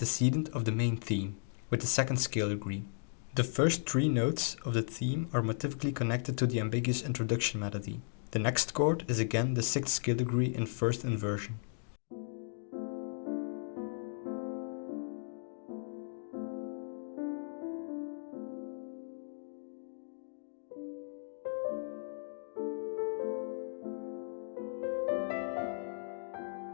of the main theme, with the second scale degree. The first three notes of the theme are motivically connected to the ambiguous introduction melody. The next chord is again the sixth scale degree in first inversion.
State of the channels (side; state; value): right; silent; digital silence